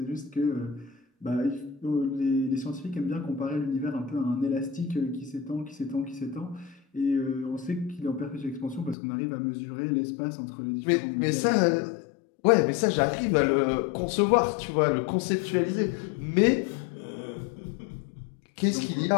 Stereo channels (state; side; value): drops out; right; at 9.0 s